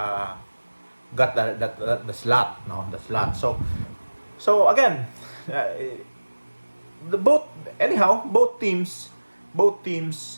got the slot, no, the slot. So again, both teams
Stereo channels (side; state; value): both; inverted; correlation -1.00